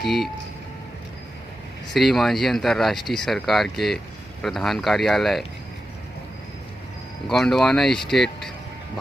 श्री मांझी अंतर्राष्ट्रीय सरकार के प्रधान कार्यालय गोंडवाना स्टेट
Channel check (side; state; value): both; normal; correlation 0.90